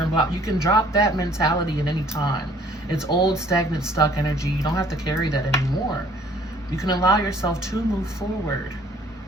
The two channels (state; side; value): normal; both; correlation 0.58